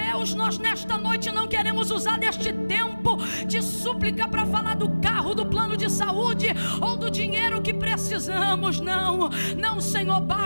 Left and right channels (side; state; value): both; inverted; correlation -1.00